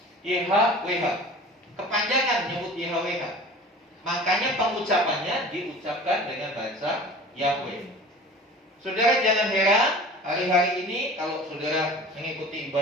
YHWH, kepanjangan menyebut YHWH. Makanya pengucapannya diucapkan dengan bahasa Yahweh. Saudara jangan heran, hari-hari ini kalau saudara mengikuti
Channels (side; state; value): both; normal; correlation 0.41